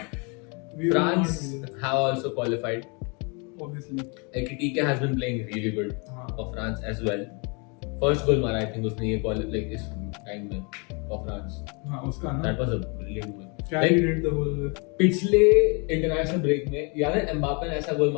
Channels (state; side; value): quieter; right; 32.7 dB